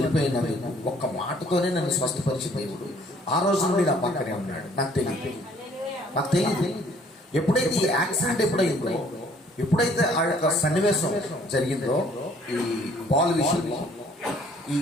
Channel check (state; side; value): normal; both; correlation 0.60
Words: ఒక్క మాటతోనే నన్ను స్వస్థపరిచి దేవుడు ఆ రోజు నుండి నా పక్కనే ఉన్నాడు. నాకు తెలియదు ఎప్పుడైతే ఈ యాక్సిడెంట్ ఎప్పుడైందో, ఎప్పుడైతే ఆ యొక్క సన్నివేశం జరిగిందో, ఈ బాల్ విషయంలో ఈ